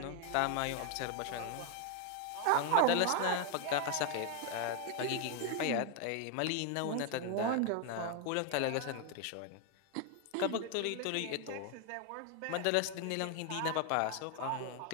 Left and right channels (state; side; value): different; both; correlation 0.01